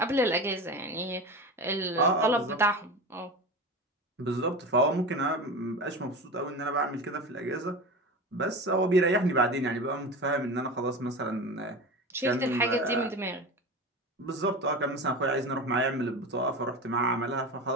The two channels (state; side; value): normal; both; correlation 0.28